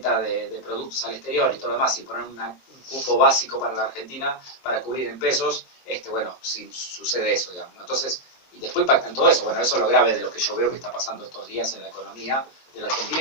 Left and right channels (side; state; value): right; late; 23 ms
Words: de productos al exterior y todo lo demás, y poner un cupo básico para la Argentina para cubrir en pesos, bueno, sí, sucede eso, digamos, ¿no? Entonces, y después impacta en todo eso. Bueno, eso es lo grave de lo que yo veo que está pasando estos días en la economía de la Argentina,